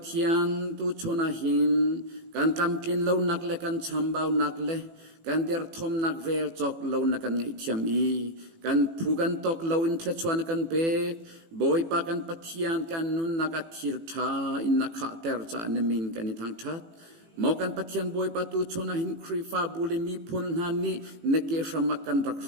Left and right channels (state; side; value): late; left; 18 ms